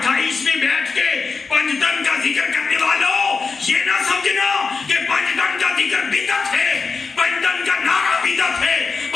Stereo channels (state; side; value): quieter; right; 4.7 dB